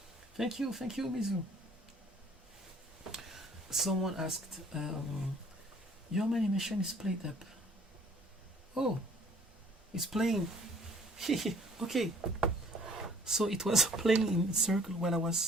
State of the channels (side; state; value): both; normal; correlation 0.55